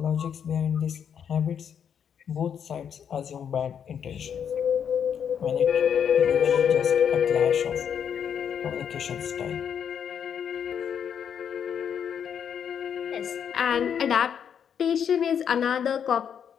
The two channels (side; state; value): right; quieter; 8.1 dB